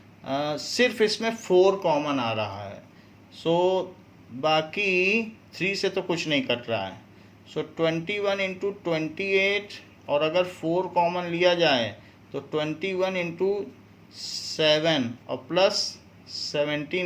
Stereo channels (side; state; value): both; identical; correlation 1.00